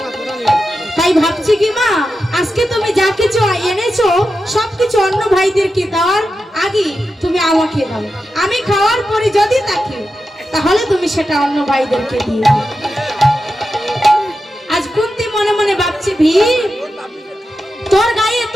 তাই ভাবছি কি মা, আজকে তুমি যা কিছু এনেছো সবকিছু অন্য ভাইদেরকে দেওয়ার আগে তুমি আমাকে দাও। আমি খাওয়ার পরে যদি থাকে তাহলে তুমি সেটা অন্য ভাইদেরকে দিয়ে দাও। আজ কুন্তি মনে মনে ভাবছে, ভীম তোর গায়ে এত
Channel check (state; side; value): normal; both; correlation 0.90